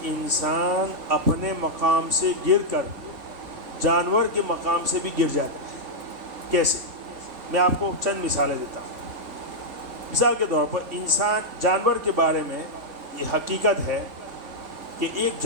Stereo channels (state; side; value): late; left; 3.8 ms